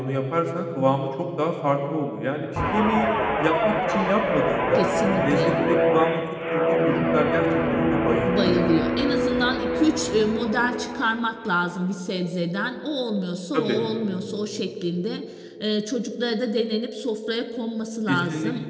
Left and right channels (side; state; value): both; identical; correlation 1.00